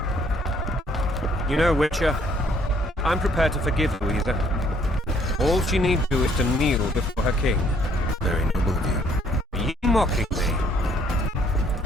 You know, Witcher, I'm prepared to forgive Louisa. All she need do is to kneel before her king. Very noble of you. Are you mocking me?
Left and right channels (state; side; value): normal; both; correlation 0.64